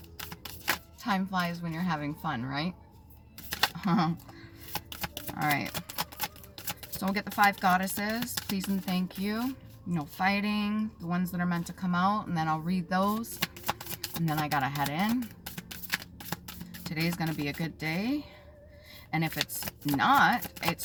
time flies when you're having fun, right? Alright. So we'll get the 5 goddesses. Please and thank you. No fighting. The ones that are meant to come out, and then I'll read those. And then I gotta head in. Today's gonna be a good day. And if it's not, it's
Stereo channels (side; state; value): both; identical; correlation 1.00